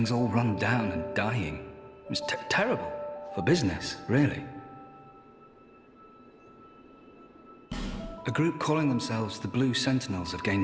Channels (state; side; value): identical; both; correlation 1.00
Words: all run down and dying. It's terrible for business, really. A group calling themselves the Blue Sentinels have gained